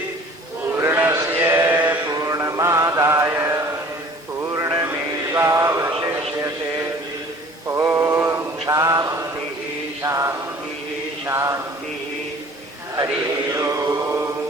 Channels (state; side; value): normal; both; correlation 0.49